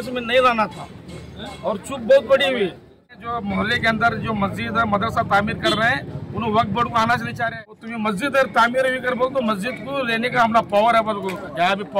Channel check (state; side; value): identical; both; correlation 1.00